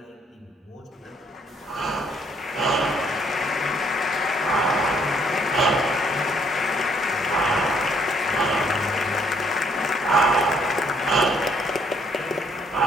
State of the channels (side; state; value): both; normal; correlation 0.67